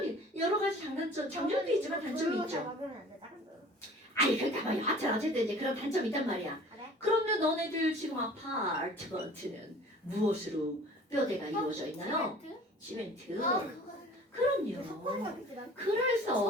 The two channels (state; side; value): normal; both; correlation 0.46